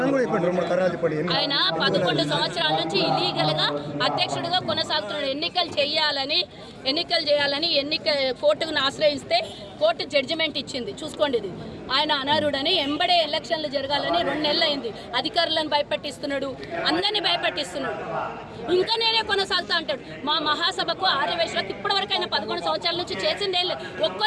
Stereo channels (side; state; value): both; identical; correlation 1.00